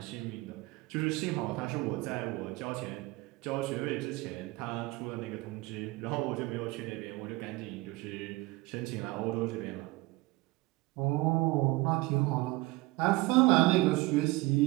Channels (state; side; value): quieter; left; 21.6 dB